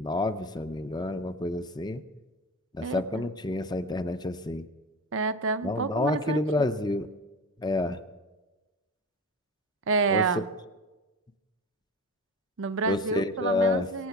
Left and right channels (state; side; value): normal; both; correlation 0.30